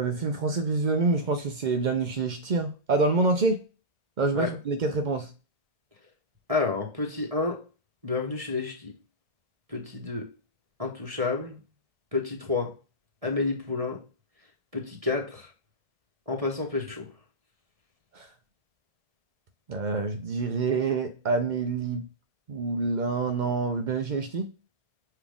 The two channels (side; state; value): left; late; 2.1 ms